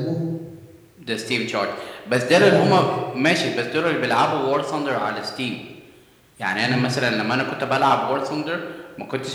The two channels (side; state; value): both; identical; correlation 1.00